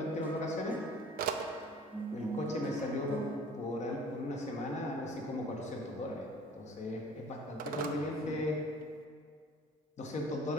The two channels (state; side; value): normal; both; correlation 0.48